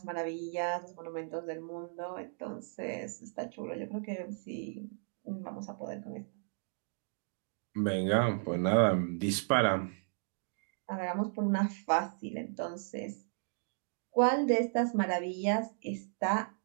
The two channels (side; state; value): left; silent; digital silence